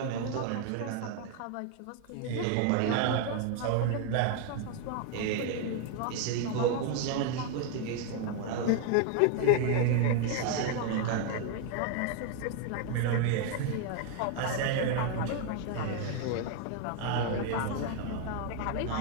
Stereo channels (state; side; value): different; both; correlation 0.00